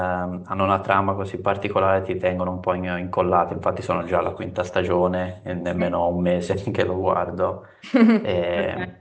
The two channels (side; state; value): both; identical; correlation 1.00